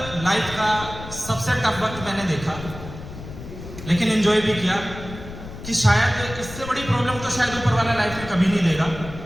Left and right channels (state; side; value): noise; left; rumble, 12 dB below the sound